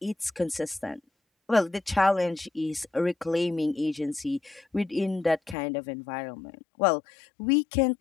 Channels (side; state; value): right; drops out; at 5.6 s